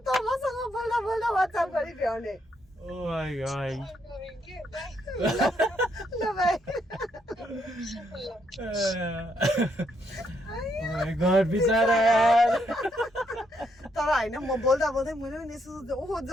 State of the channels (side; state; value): both; normal; correlation 0.75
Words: त मसँग बोल्दा बोल्दा WhatsApp गरि भ्याउने Oh my god. ल बाइ Oh my god, बिचारा यार. तर हैन म बोल्दा बोल्दै मैले पनि यसो ओहो